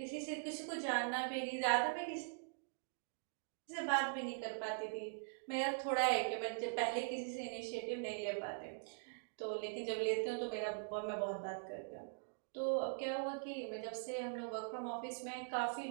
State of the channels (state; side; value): silent; left; digital silence